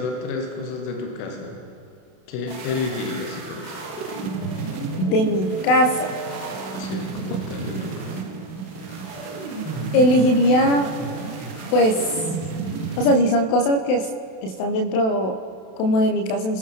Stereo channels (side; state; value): right; late; 32 ms